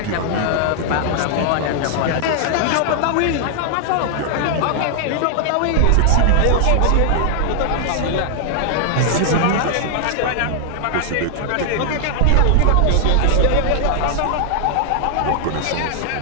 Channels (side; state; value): both; different; correlation 0.00